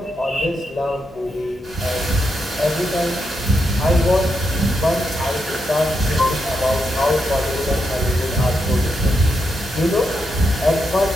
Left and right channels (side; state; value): both; normal; correlation 0.83